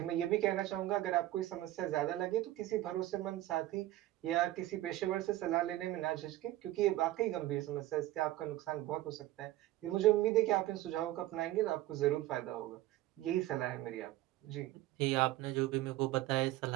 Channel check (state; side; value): quieter; left; 15.7 dB